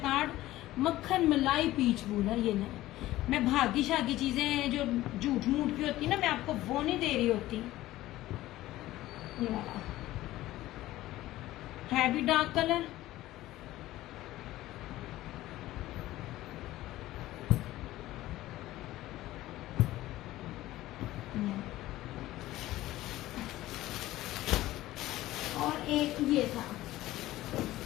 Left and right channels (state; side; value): quieter; right; 16.0 dB